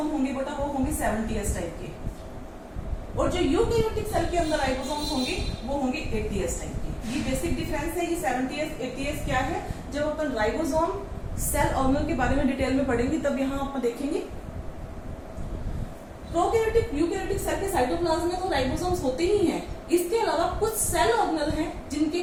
होंगे बेटा वो होंगे 70S टाइप के, और जो यूकैरियोटिक सेल के अंदर राइबोसोम्स होंगे वो होंगे 80S टाइप के. ये बेसिक डिफरेंस है. ये 70S 80S क्या है, जब अपन राइबोसोम सेल ऑर्गेनल के बारे में डिटेल में पढ़ेंगे तब यहाँ आप देखेंगे। प्रोकैरियोटिक यूकैरियोटिक सेल के साइटोप्लाज्म में तो राइबोसोम्स होते ही हैं। इसके अलावा कुछ सेल ऑर्गेनल हैं जिनके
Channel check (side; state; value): both; identical; correlation 1.00